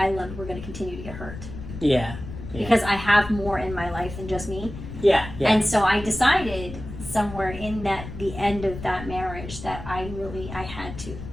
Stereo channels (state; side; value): noise; left; rumble, 11 dB below the sound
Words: loved were going to continue to get hurt. Yeah. Because I have more in my life than just me. Yeah. And so I decided somewhere in the end of that marriage that I had